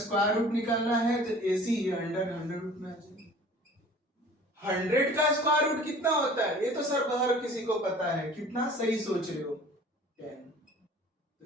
रूट निकालना है तो AC ये 100 रूट में आ जाएगा। 100 का स्क्वायर रूट कितना होता है? ये तो सर हर किसी को पता है। कितना? सही सोच रहे हो, 10। तो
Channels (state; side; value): normal; both; correlation 0.47